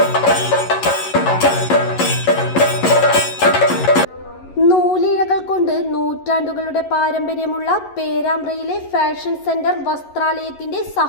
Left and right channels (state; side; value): late; right; 11 ms